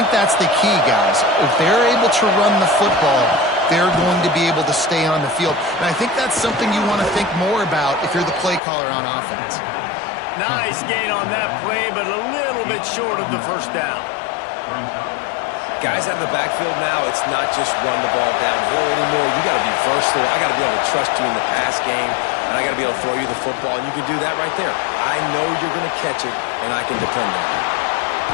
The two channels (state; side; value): drops out; right; at 8.6 s